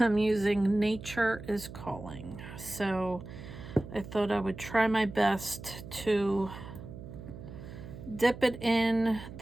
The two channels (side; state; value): right; noise; hum, 13 dB below the sound